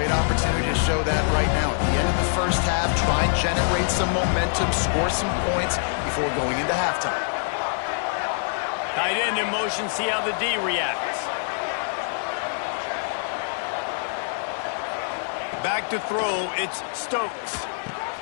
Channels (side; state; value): right; silent; digital silence